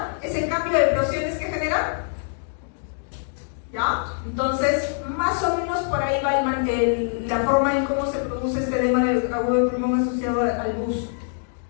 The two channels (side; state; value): right; silent; digital silence